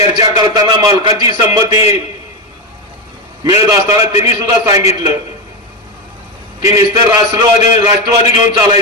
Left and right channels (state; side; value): normal; both; correlation 0.13